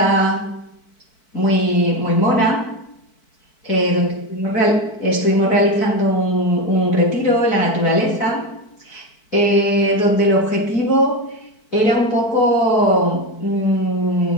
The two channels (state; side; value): late; right; 4.6 ms